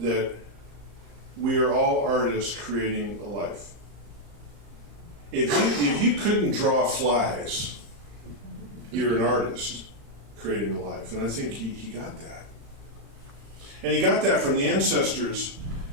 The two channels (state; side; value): late; left; 35 ms